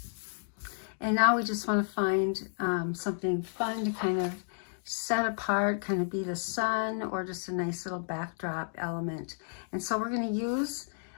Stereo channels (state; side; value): silent; right; digital silence